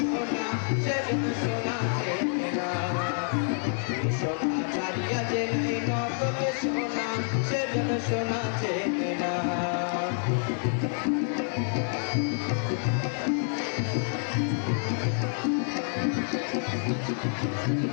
সেজন সোনা না সোনা ছাড়িয়া যে নাই নকল সোনা সেজন সোনা চেনে না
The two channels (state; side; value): silent; right; 59 dB below the other